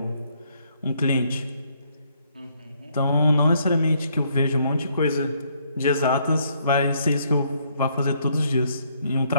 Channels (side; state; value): both; inverted; correlation -0.70